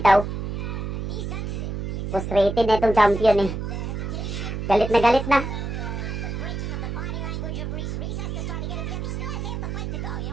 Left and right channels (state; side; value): noise; right; hum, 4 dB below the sound